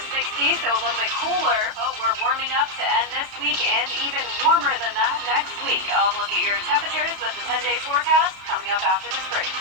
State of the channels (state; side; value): late; left; 32 ms